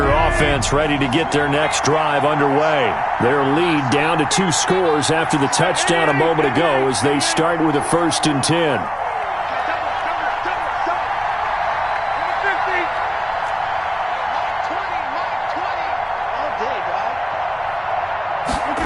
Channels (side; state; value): both; identical; correlation 1.00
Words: offense ready to get their next drive underway. Their lead down to 2 scores after the touchdown a moment ago as they start with a 1st and 10.